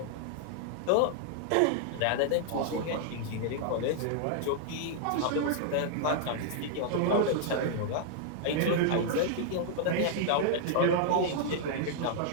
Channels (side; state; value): both; different; correlation 0.00